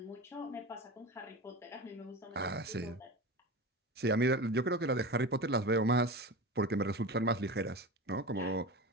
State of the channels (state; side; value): normal; both; correlation 0.27